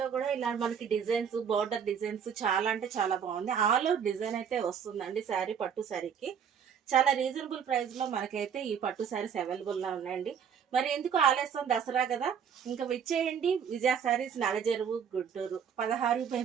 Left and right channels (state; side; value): quieter; left; 7.6 dB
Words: కూడా ఇలా మనకి డిజైన్స్, బార్డర్ డిజైన్స్ చాలా అంటే చాలా బాగుంది. ఆల్ ఓవర్ డిజైన్ అయితే వస్తుందండి శారీ, పట్టు శారీకి. చాలా రీజనబుల్ ప్రైస్ లో మనకైతే ఈ పట్టు శారీస్ అవైలబుల్ గా ఉన్నాయండి. మరి ఎందుకు ఆలస్యం, దసరా కదా, ఇంకా విచ్చేయండి. విజయ శారీస్, నడజరువు, గుంటూరు